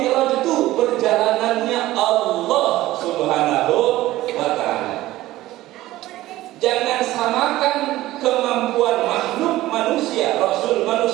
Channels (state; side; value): quieter; left; 16.2 dB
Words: itu perjalanannya Allah Subhanahu wa ta'ala. Jangan samakan kemampuan makhluk manusia, Rasul